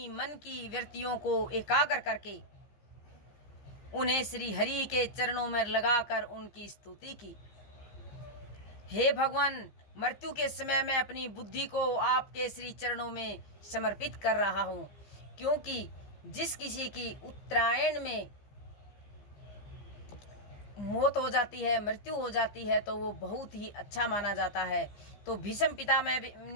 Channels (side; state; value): right; late; 15 ms